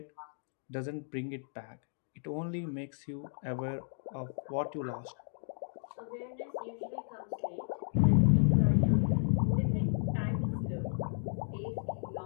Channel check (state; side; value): silent; right; digital silence